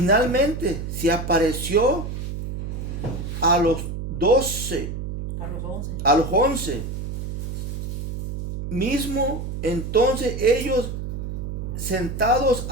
se apareció a los 12, a los 11. Mismo entonces ellos sentados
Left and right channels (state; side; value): noise; right; hum, 5 dB below the sound